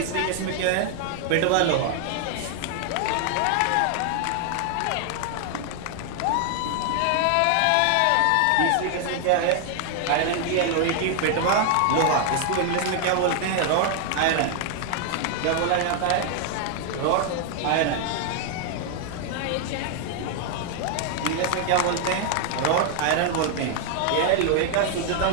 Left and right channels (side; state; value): both; different; correlation 0.00